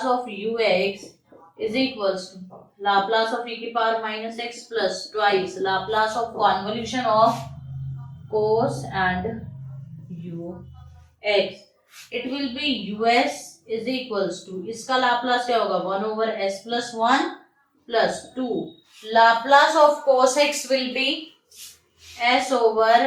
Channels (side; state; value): both; identical; correlation 1.00